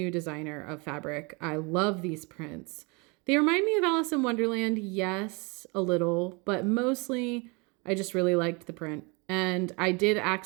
designer of fabric. I love these prints. They remind me of Alice in Wonderland, yes, a little, but mostly I just really liked the print. And I did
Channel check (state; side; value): quieter; left; 29.5 dB